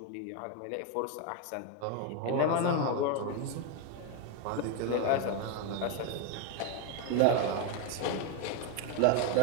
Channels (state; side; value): different; both; correlation 0.01